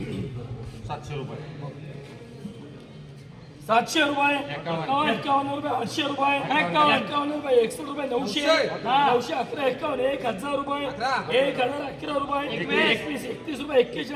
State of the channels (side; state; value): both; identical; correlation 1.00